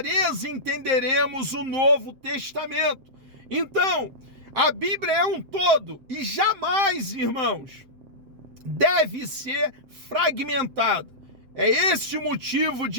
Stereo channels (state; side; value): late; left; 7.6 ms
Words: entenderemos o Novo Testamento. Então, a Bíblia é um todo e jamais, irmãos, deve ser fragmentada. É esse o motivo